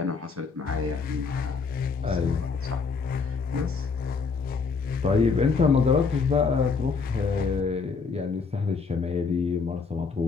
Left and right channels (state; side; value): quieter; right; 5.0 dB